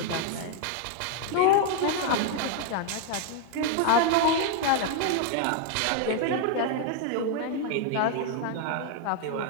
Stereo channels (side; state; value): both; different; correlation 0.00